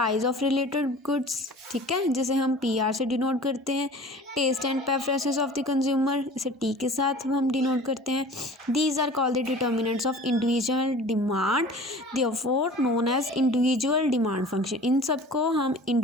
ऑफ रिलेटेड गुड्स, ठीक है, जिसे हम PR से डिनोट करते हैं. Taste and preferences of the consumer, इसे T के साथ हम डिनोट करते हैं. These are called the determinants of individual demand, therefore known as individual demand function. इन सबको हम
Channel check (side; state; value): both; normal; correlation 0.43